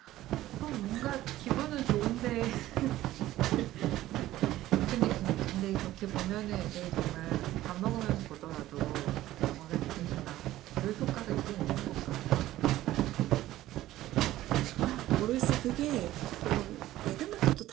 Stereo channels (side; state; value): left; quieter; 15.0 dB